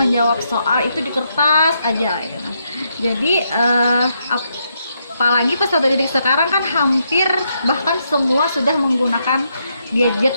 soal itu di kertas aja gitu. Jadi apalagi peserta didik sekarang kan hampir bahkan semua sudah menggunakan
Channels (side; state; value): both; inverted; correlation -0.79